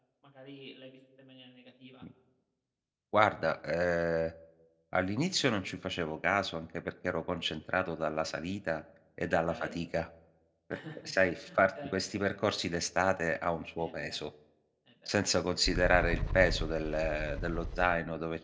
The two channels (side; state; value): both; identical; correlation 1.00